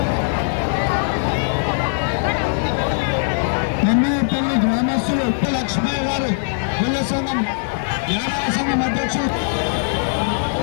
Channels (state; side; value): silent; right; digital silence